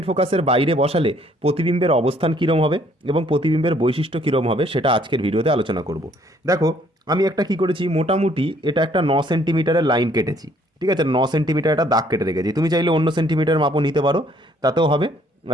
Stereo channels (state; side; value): normal; both; correlation 0.63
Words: ফোকাসের বাইরে বসালে প্রতিবিম্বের অবস্থান কীরকম হবে এবং প্রতিবিম্বের বৈশিষ্ট্য কীরকম হবে সেটা আজকের ভিডিওতে আলোচনা করব। দেখো, আমি একটা কি করেছি, মোটামুটি এটা একটা 9 সেন্টিমিটারের লাইন কেটেছি। ঠিক আছে, 9 সেন্টিমিটার একটা দাগ কেটে রেখেছি। তুমি চাইলে অন্য সেন্টিমিটার মাপও নিতে পারো, তাতেও হবে,